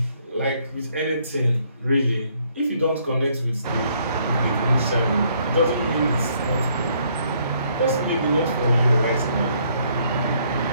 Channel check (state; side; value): inverted; both; correlation -0.67